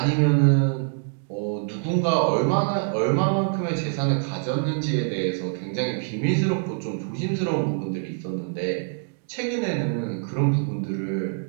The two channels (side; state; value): left; silent; digital silence